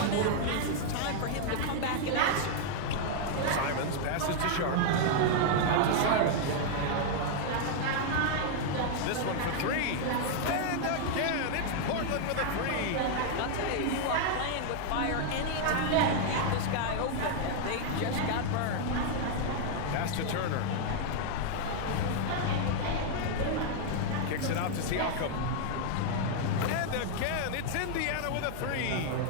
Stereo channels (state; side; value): different; both; correlation 0.00